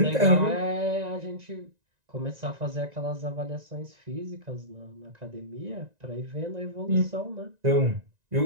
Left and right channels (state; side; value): late; left; 1.9 ms